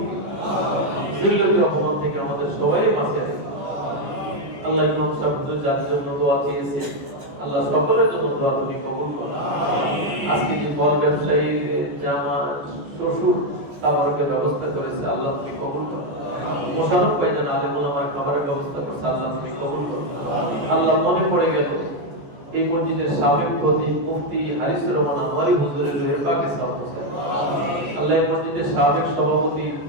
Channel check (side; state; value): left; late; 14 ms